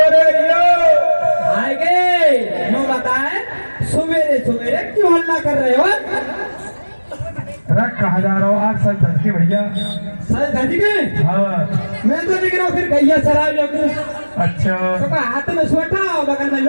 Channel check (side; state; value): both; inverted; correlation -1.00